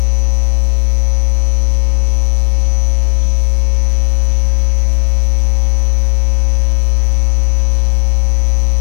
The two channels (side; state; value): right; silent; 73 dB below the other